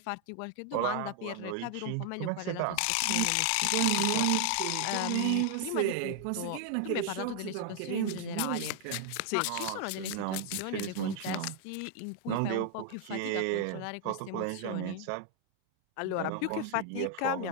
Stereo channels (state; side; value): different; both; correlation 0.00